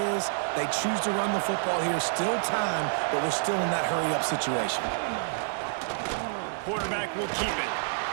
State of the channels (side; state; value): left; silent; digital silence